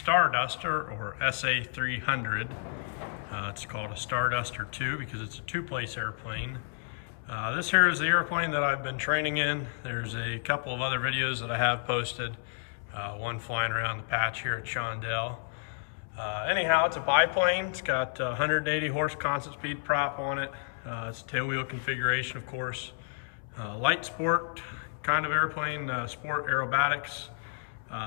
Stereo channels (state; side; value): silent; right; 57 dB below the other